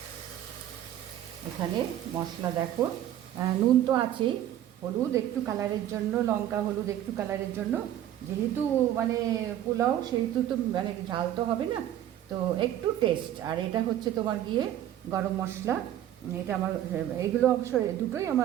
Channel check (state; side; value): quieter; left; 11.8 dB